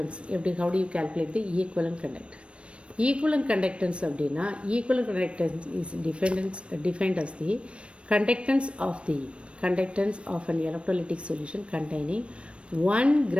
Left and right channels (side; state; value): left; late; 0.060 ms